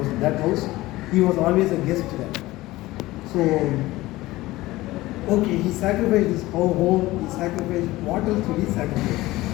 in that house. He was always a guest there. So, okay, he sacrificed his home, he sacrificed, what else did he sacrifice?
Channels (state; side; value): quieter; right; 18.4 dB